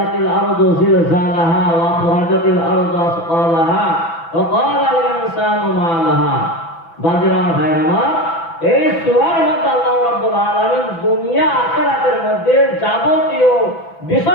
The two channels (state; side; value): late; right; 6.0 ms